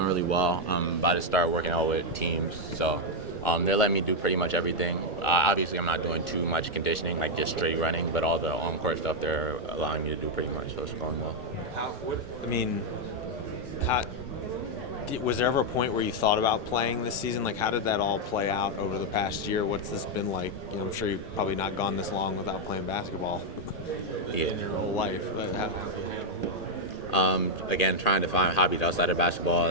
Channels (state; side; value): normal; both; correlation 0.00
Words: really well. I'm about to start working out with teams, so they're letting me do pretty much everything. Obviously, I'm not doing too much conditioning, like just straight running, but all the on-court stuff they're allowing me to do pretty much, so it's going well. I mean, how, was there ever a point where you thought about playing this season? Like, how did that all play out over the past year? What's this been like? I'm sure you've probably not gone this long without playing basketball in your whole life. But Again, trying to find hobbies outside of basketball